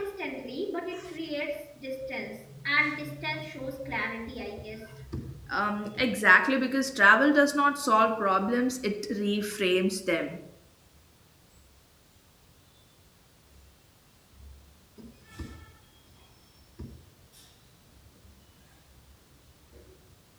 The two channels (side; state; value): both; identical; correlation 1.00